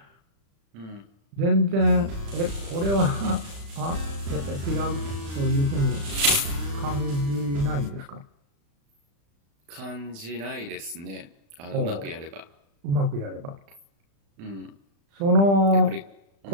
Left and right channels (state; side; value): late; left; 35 ms